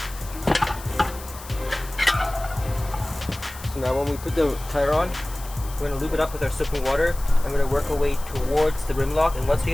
Now when we put the tire on, we're going to lube it up with our soaping water. I'm going to work our way towards the rim lock, and once we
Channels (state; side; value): noise; left; hiss, 16 dB below the sound